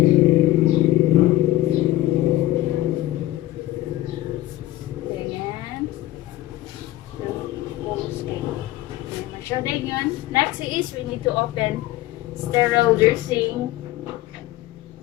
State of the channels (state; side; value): quieter; right; 16.0 dB